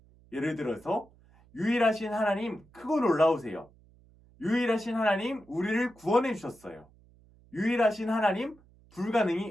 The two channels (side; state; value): right; noise; hum, 28 dB below the sound